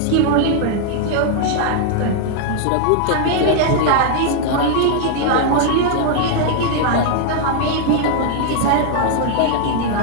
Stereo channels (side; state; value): both; different; correlation 0.00